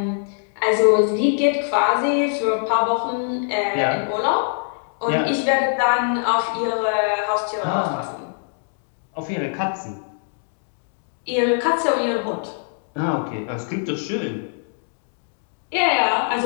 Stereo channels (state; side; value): silent; right; digital silence